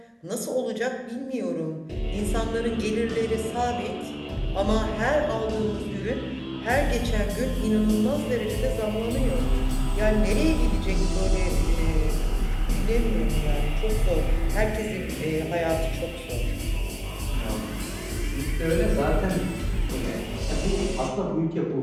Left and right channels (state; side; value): identical; both; correlation 1.00